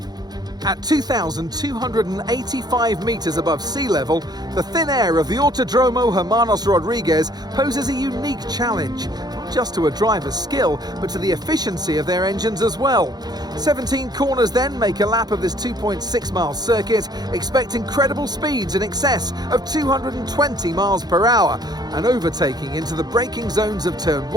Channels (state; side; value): late; left; 0.19 ms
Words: At 2,285 metres above sea level, the thin air of the Autódromo Hermanos Rodriguez poses a unique challenge, not just to a driver's skill, but to the efficiency of their engines as well. 17 corners then make a lap of this 2.6-mile circuit, expect incredible speeds in excess of 220 miles per hour, and overtaking into the braking zones of Turn